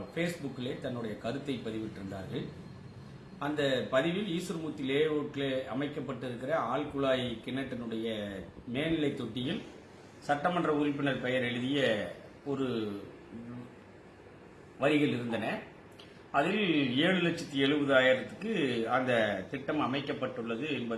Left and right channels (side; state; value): both; identical; correlation 1.00